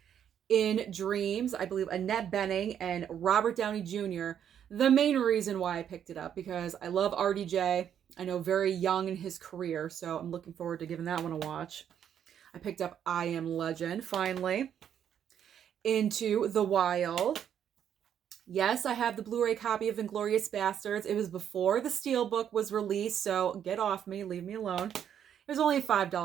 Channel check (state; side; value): quieter; left; 9.2 dB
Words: In Dreams, I believe Annette Bening and Robert Downey Jr. The main reason why I picked it up, because I love RDJ. I know very young in his career, so I'm looking forward to giving that one a watch. I picked up I Am Legend, finally. Into the Wild. Yes, I have the Blu-ray copy of Inglourious Basterds. It was before the Steelbook was released, so get off me, leave me alone. It was only a